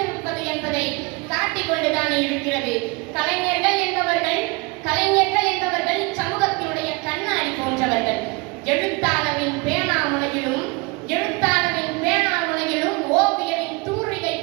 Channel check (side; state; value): left; quieter; 27.3 dB